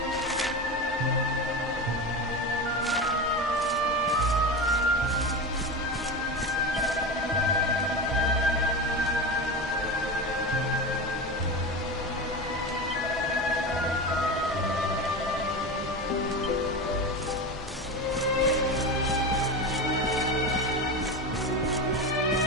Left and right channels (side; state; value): both; normal; correlation 0.23